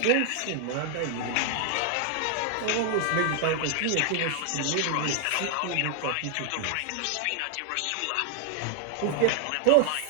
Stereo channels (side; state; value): both; different; correlation 0.00